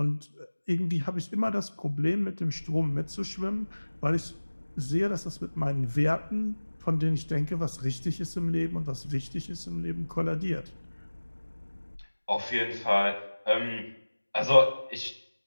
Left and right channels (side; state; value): both; inverted; correlation -1.00